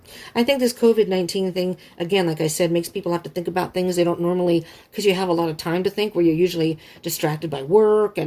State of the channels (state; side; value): identical; both; correlation 1.00